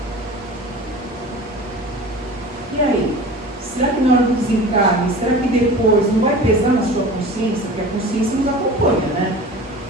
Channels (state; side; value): normal; both; correlation 0.38